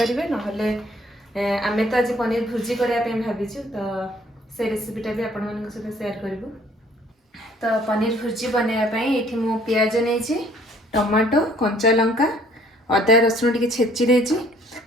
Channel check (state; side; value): normal; both; correlation 0.59